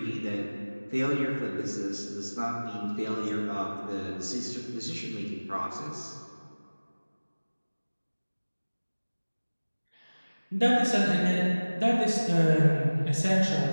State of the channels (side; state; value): both; inverted; correlation -1.00